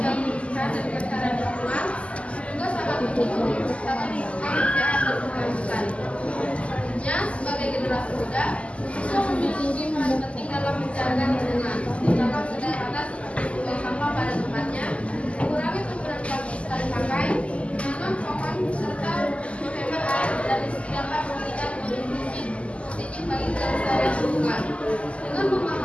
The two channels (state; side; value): late; right; 0.059 ms